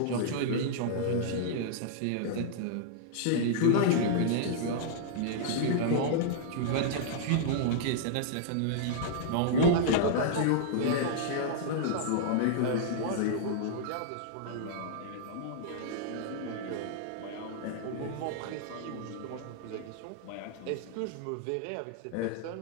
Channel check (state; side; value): different; both; correlation -0.01